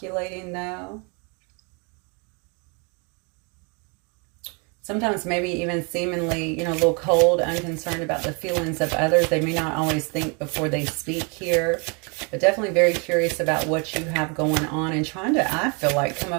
though. Sometimes maybe even seemingly, you know, a little cold, unconcerned about the feelings of others. They may not always think before they speak here, but definitely very curious about what you have going on and trying to, I feel like, come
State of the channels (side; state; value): left; quieter; 33.5 dB